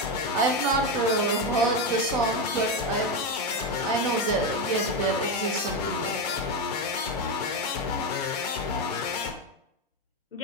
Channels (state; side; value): normal; both; correlation 0.11